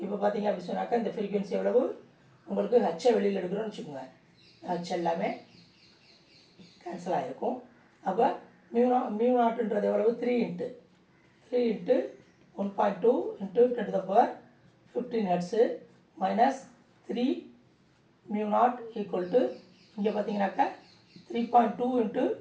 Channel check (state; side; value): identical; both; correlation 1.00